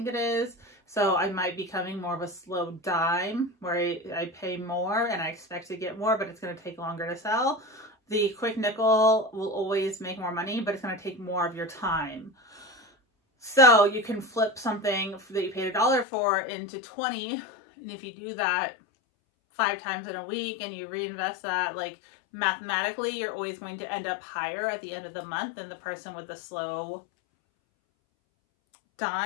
it is. So I might be becoming more of a slow dime where I pay more and I expect to get more, but it's going to take longer to sell. The quick nickel will always make more money, but it's going to take more of your time. So you can flip something that you paid $1 for into 20. And if you do that 5 times in a week and you reinvest that, like mathematically, you're always going to end up higher at the end of the month than the person with the slow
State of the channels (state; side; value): drops out; right; at 16.1 s